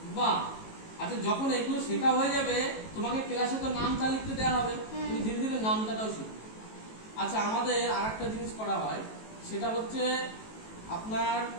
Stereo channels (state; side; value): late; right; 18 ms